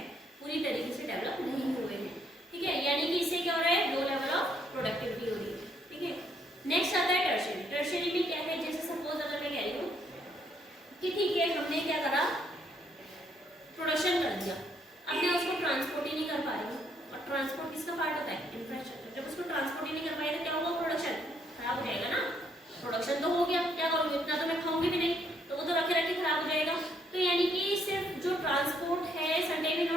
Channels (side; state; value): both; normal; correlation 0.70